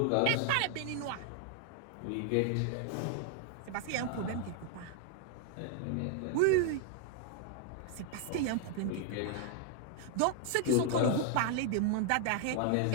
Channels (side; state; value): both; different; correlation 0.00